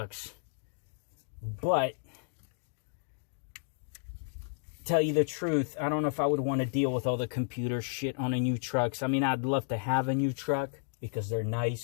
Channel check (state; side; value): silent; right; digital silence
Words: But, tell you the truth, I don't know if I would want to deal with all the computer shit on a new truck. I mean, I'd love to have a new truck because they're